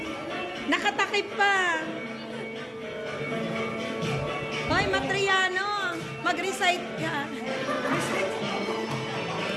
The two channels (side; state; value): both; identical; correlation 1.00